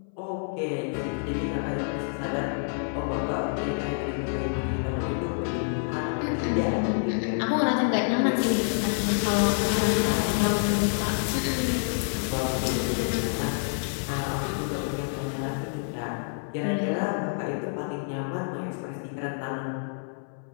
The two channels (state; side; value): silent; right; 60 dB below the other